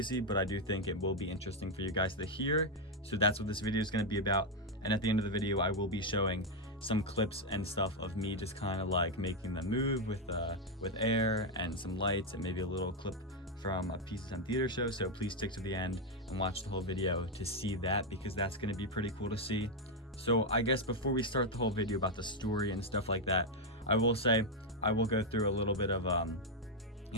but I do think it will be interesting for you guys to hear. So that's what this video is going to be about. And at the end of the video, I will be showing some clips and stuff of me just kind of like making them move with air and some lights and maybe a little clip from a Pizza Time Theater show. So please stick to the end and watch the whole video to see that, because that's going to be pretty cool to see. So I guess before we start the whole video about the story and stuff like that, I will say I will go through a little bit of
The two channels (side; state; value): both; normal; correlation 0.02